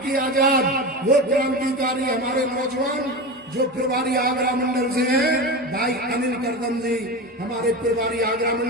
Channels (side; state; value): both; normal; correlation 0.24